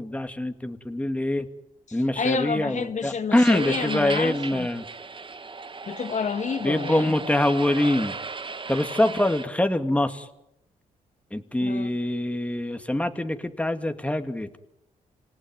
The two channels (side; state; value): both; normal; correlation 0.85